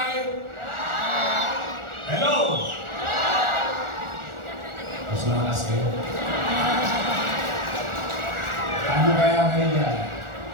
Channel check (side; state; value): left; late; 1.4 ms